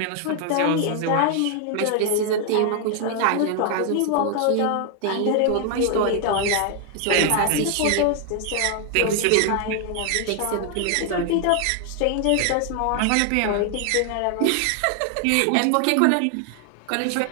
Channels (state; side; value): different; both; correlation 0.00